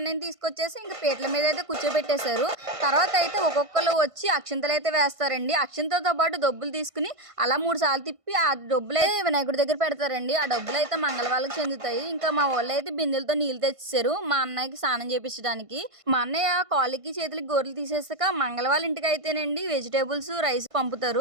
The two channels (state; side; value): late; left; 1.5 ms